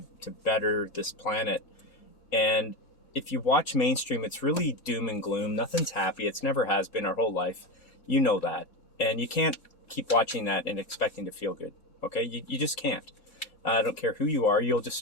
better this planet. And if you watch mainstream, it's really doom and gloom. Nothing's happy. It's never has been our whole life. You know that. And you can't keep watching that and expecting to feel good. Okay? You just can't. I don't care who you are. You'll just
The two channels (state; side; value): normal; both; correlation 0.18